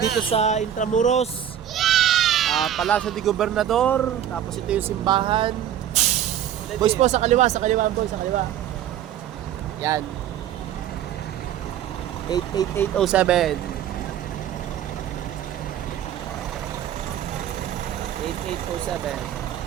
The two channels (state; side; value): quieter; left; 10.4 dB